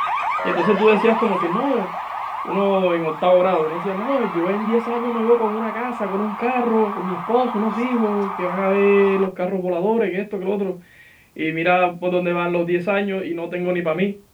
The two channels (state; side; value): identical; both; correlation 1.00